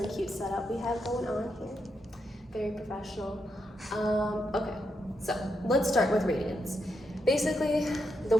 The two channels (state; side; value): normal; both; correlation 0.83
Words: cute setup we have going on here. Very professional. Okay, so let's start with radians. Basically, the